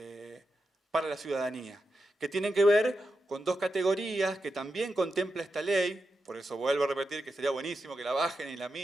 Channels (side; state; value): both; normal; correlation 0.88